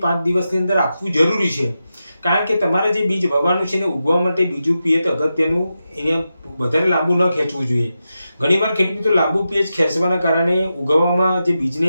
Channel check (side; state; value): both; inverted; correlation -0.90